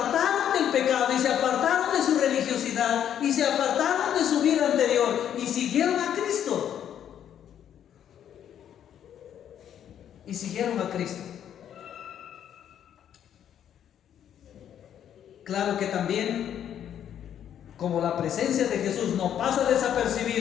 del pecado y se apartaron de su religiosidad y se apartaron de su vida anterior y siguieron a Cristo. Y siguieron a Cristo. Claro que también, como la presencia de Jesús no pasa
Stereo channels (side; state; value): right; quieter; 9.8 dB